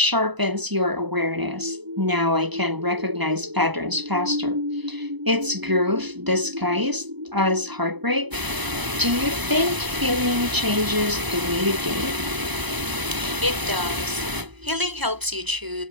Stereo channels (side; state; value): left; late; 1.0 ms